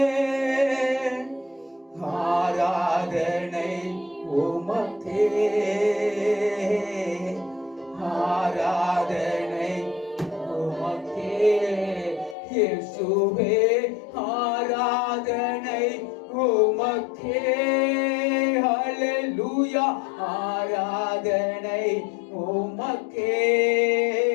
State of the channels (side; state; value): right; drops out; at 12.4 s